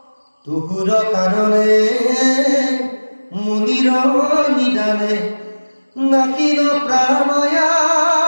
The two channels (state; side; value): inverted; both; correlation -1.00